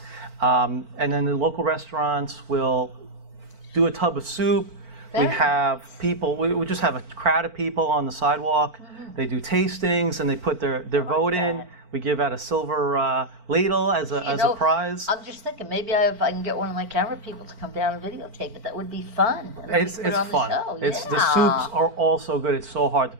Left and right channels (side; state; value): left; late; 4.4 ms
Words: And then the local restaurants will do a tub of soup. We Very have people, we just have a crowd of people on the sidewalk. They do tastings and they put their vote in. that. We give out a silver ladle as a prize. I'm just thinking, maybe if I can get one of my camera people to come down and videotape it, that would be fun. And then It's we put it on the fun. show. The Yeah. soups are all so good. It's so hard to